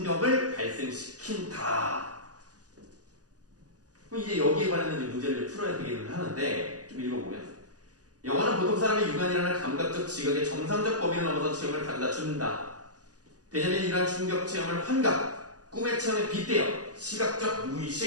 발생시킨다. 그럼 이제 여기에 관련된 문제를 풀어야 되기는 하는데, 좀 읽어보면, 영화는 보통 사람의 육안이라는 감각적 지각의 정상적 범위를 넘어서 체험을 가져다 준다. 왜냐면 이러한 충격 체험을 환각, 꿈의 체험에 빗대어 시각적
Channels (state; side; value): late; left; 0.68 ms